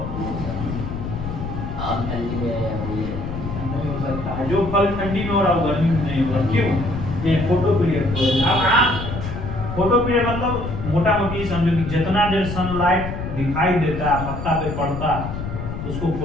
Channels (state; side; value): noise; left; rumble, 6 dB below the sound